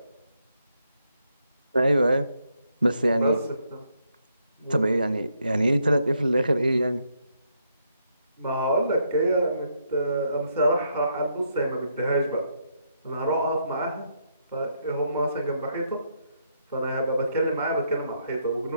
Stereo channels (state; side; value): inverted; both; correlation -0.76